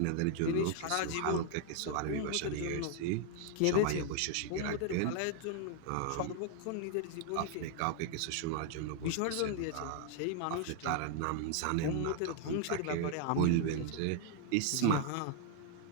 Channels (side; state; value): both; different; correlation 0.00